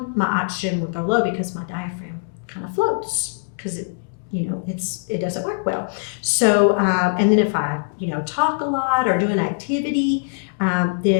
my oxygen will go low because my diaphragm kind of floats, because it doesn't work well. So, and then if I, talk a lot or do an activity,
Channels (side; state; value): right; silent; digital silence